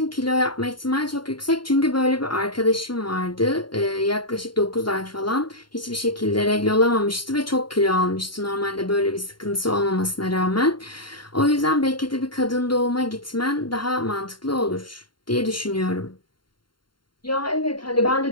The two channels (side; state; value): right; late; 0.72 ms